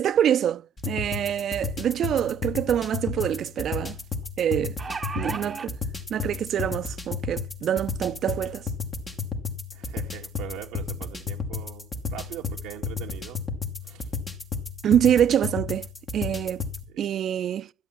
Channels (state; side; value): quieter; left; 5.4 dB